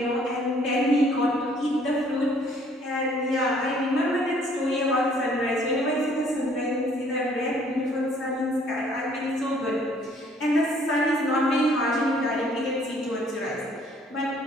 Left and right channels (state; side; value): normal; both; correlation 0.61